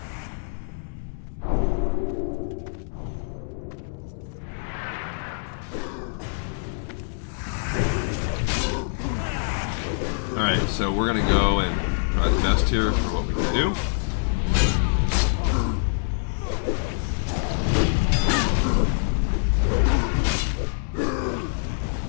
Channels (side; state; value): right; silent; digital silence